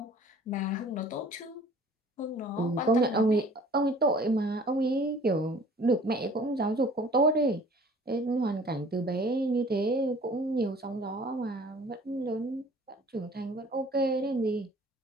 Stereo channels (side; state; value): both; normal; correlation 0.50